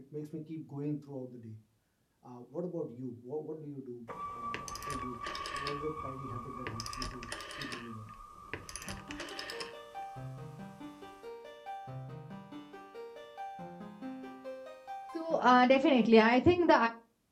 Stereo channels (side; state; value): both; identical; correlation 1.00